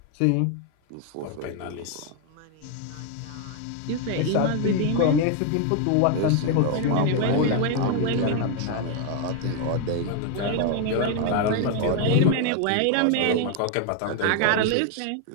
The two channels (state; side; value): different; both; correlation 0.01